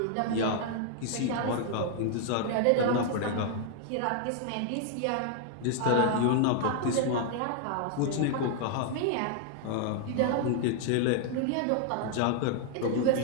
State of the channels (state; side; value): different; both; correlation 0.00